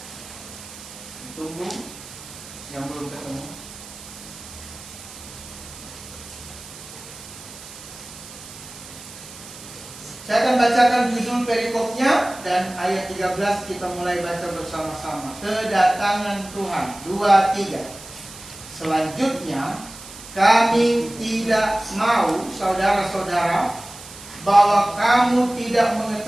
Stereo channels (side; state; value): right; noise; hiss, 16 dB below the sound